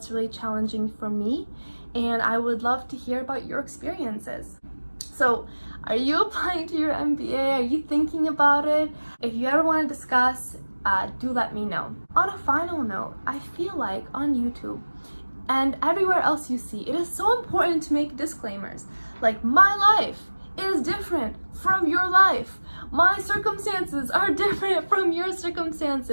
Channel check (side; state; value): both; inverted; correlation -1.00